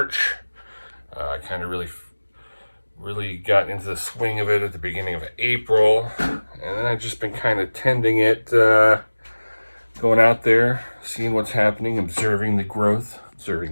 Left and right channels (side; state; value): both; inverted; correlation -1.00